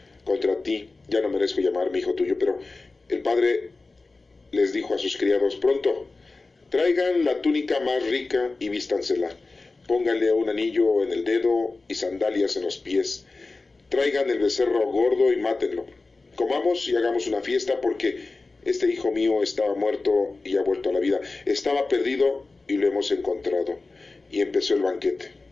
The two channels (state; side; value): quieter; right; 3.6 dB